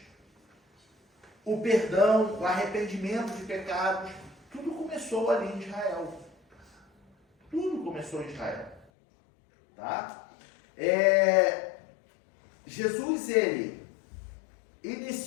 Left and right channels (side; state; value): right; drops out; at 8.8 s